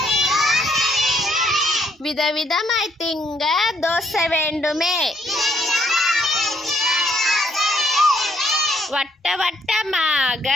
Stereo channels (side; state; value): both; normal; correlation 0.70